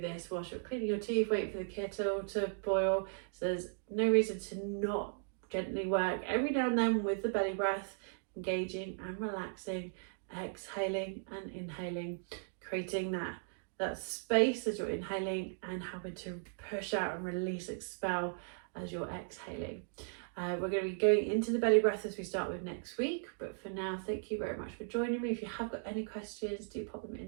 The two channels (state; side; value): silent; left; digital silence